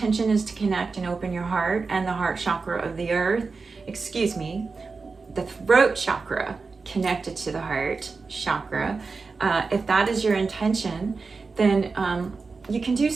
is to connect and open your heart and the heart chakra of the earth, the throat chakra connected to the heart chakra, if that is your intention, then you can do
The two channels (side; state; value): left; quieter; 4.4 dB